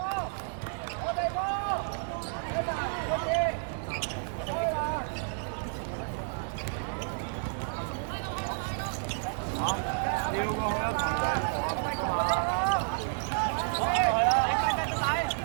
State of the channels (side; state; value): left; silent; digital silence